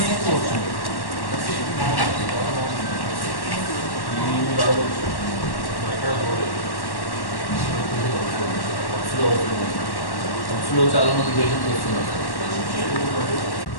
చాలా మంది పేషెంట్స్ వస్తున్నారు.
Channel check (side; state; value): right; late; 1.1 ms